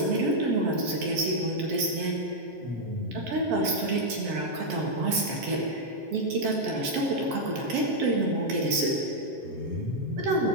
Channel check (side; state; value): left; late; 7.5 ms